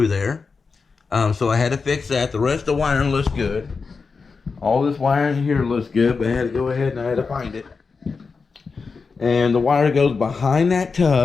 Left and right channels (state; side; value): quieter; right; 4.8 dB